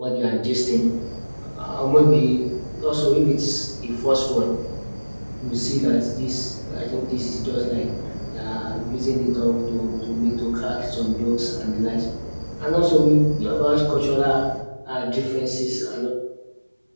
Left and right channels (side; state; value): both; inverted; correlation -1.00